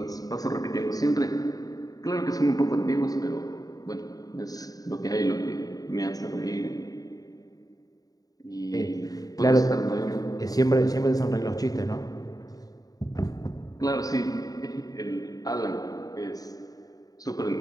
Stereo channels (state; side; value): late; right; 0.18 ms